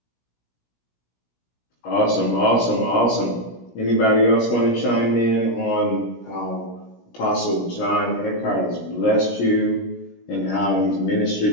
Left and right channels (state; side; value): late; right; 17 ms